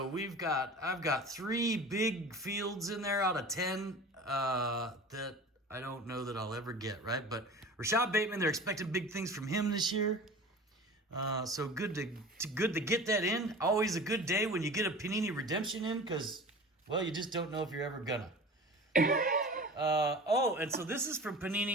I've got 3 big fields in there out of 10 that I don't know that I'll ever get, right? But Rashad Bateman, they're expecting big things from him this year. So good to get that in. Always a good day when you get a Panini Redemption in because, well, you just don't know if you're ever gonna. And so this is from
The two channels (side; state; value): both; normal; correlation 0.37